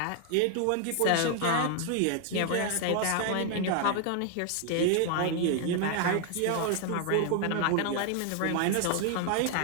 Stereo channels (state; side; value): different; both; correlation 0.00